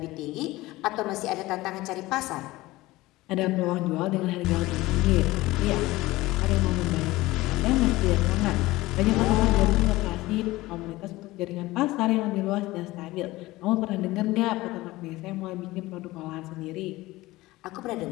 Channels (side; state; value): right; quieter; 18.9 dB